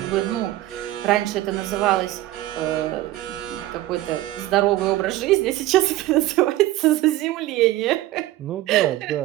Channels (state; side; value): quieter; left; 16.0 dB